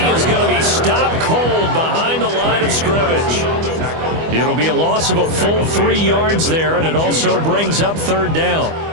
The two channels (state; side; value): late; left; 25 ms